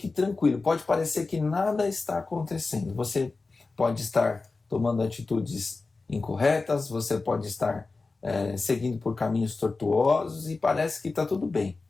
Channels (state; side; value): quieter; right; 3.8 dB